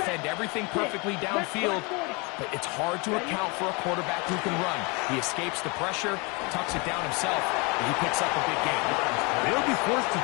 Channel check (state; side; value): quieter; right; 29.3 dB